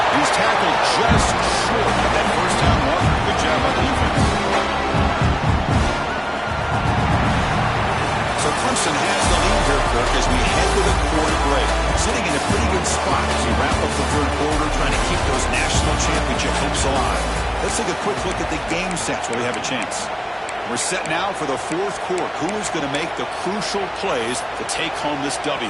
He's tackled just short of that first down marker. Good job by the defense. So Clemson has the lead here, Kirk, as we head to the quarter break. Sitting in a pretty good spot as we wrap up the third quarter, trying to keep those national championship hopes alive. Let's take a quick look at the game sets while we have a chance. We're set now for the fourth quarter. Who is going to make the crucial plays to take home this W?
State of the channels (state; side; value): identical; both; correlation 1.00